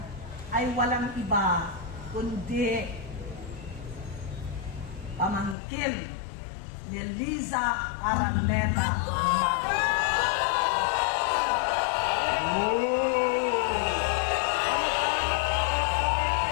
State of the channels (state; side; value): drops out; right; at 5.6 s